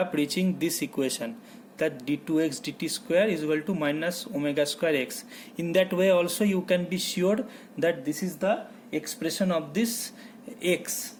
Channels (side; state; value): both; identical; correlation 1.00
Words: reaching this equation, that d2x dt square is equal to minus omega square x. In that way also you can be sure that this is the expression of this x,